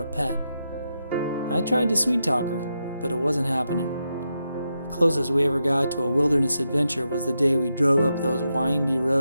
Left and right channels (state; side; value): inverted; both; correlation -0.86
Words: a pet. I tried to sweet talk her, but it wasn't happening. The closest we ever got to a wilderness adventure was the day we drove up those windy